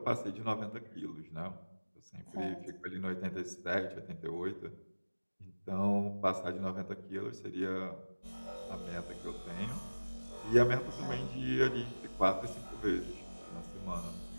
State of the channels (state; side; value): inverted; both; correlation -1.00